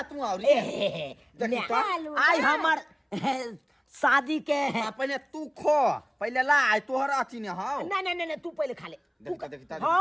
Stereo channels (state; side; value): identical; both; correlation 1.00